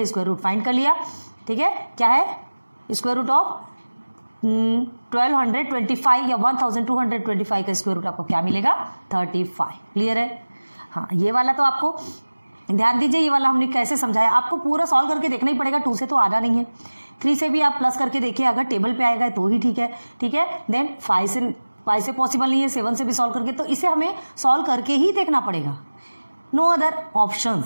स्क्वायर रूट फाइंड कर लिया, ठीक है। क्या है, स्क्वायर रूट ऑफ 1225 या 1225 का स्क्वायर रूट आपको क्या मिलेगा, 35, क्लियर है। हाँ, ये वाला तो आपको ध्यान दीजिए, ये वाला हमने कैसे समझाया, आपको पूरा सॉल्व करके देखना ही पड़ेगा, 2 से तो आना नहीं है। 3 से भी आप प्लस करके देखिए, अगर टेबल पे आएगा तो ही ठीक है, ठीक है। देन 5 से पॉसिबल नहीं है, 7 से भी सॉल्व करके, तो इसे हमें सॉल्व करके ही देखना पड़ेगा, नो अदर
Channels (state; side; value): inverted; both; correlation -1.00